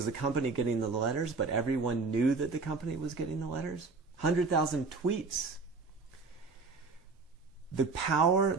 the company getting the letters, but everyone knew that the company was getting the letters, 100,000 tweets. The power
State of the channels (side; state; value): left; quieter; 4.2 dB